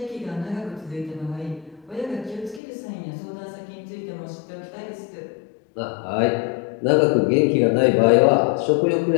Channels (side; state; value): right; drops out; at 2.6 s